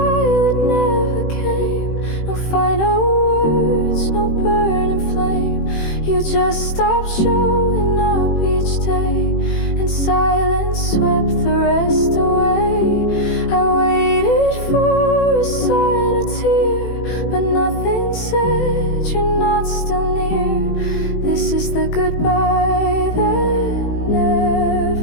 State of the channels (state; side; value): late; right; 18 ms